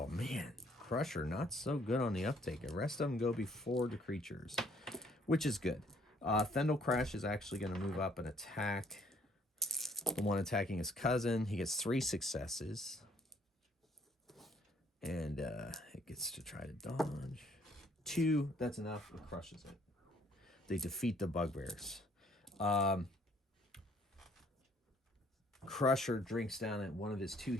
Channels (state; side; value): normal; both; correlation 0.63